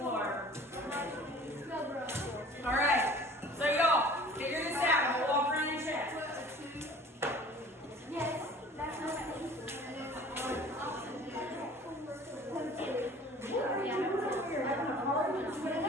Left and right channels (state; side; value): normal; both; correlation 0.47